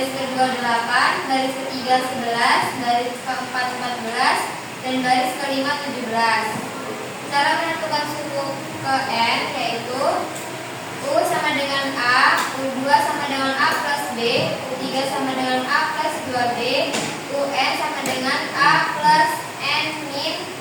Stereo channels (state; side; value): identical; both; correlation 1.00